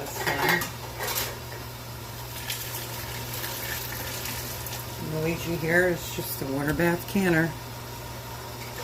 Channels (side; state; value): both; identical; correlation 1.00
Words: time. Luigi here is just a water bath canner.